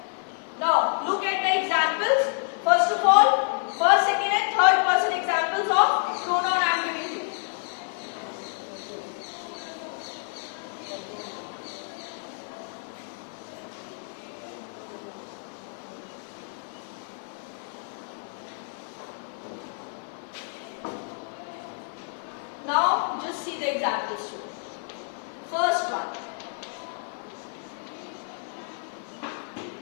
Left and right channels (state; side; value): silent; right; 59 dB below the other